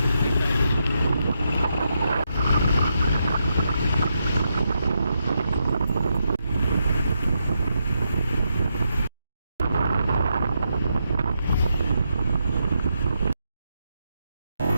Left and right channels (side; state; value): both; inverted; correlation -0.82